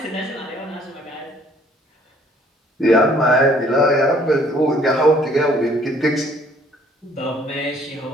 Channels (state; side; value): normal; both; correlation 0.60